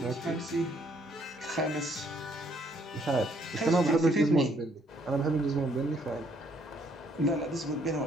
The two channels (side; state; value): both; normal; correlation 0.67